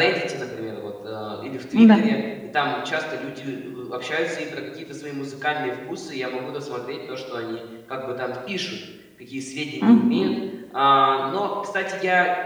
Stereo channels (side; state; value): both; identical; correlation 1.00